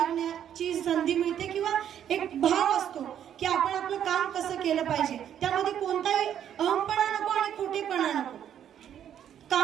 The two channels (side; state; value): left; quieter; 9.8 dB